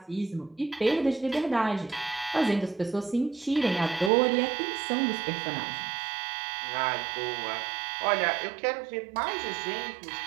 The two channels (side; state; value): left; drops out; at 4.1 s